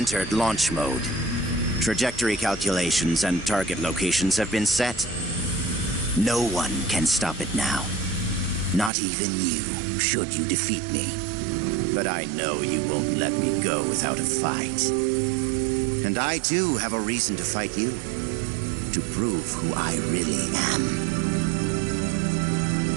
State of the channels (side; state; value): left; drops out; at 8.9 s